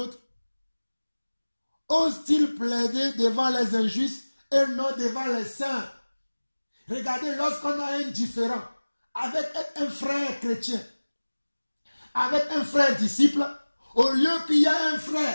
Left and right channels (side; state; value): both; inverted; correlation -1.00